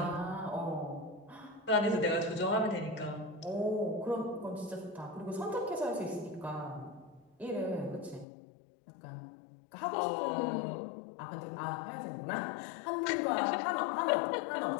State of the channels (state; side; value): drops out; right; at 8.2 s